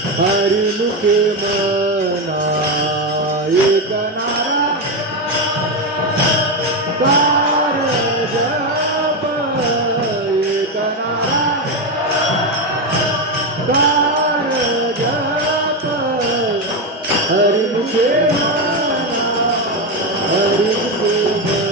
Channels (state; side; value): normal; both; correlation 0.11